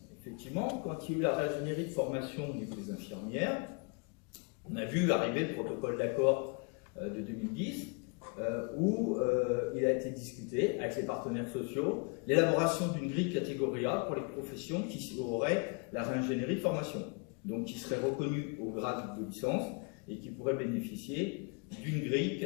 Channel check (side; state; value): right; quieter; 34.0 dB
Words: effectivement, quand il y a eu la réingénierie de formation au niveau des infirmières, on a vu arriver le protocole d'accord de 2010 où il a été discuté avec les partenaires sociaux l'élaboration d'une grille catégorie A pour les professions qui auraient la réingénierie de formation, donc qui seraient reconnues au grade de licence et qui pourraient bénéficier d'une grille